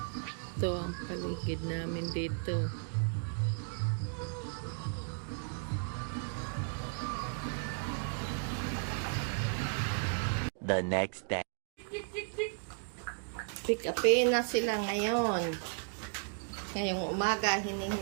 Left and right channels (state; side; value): silent; left; 55 dB below the other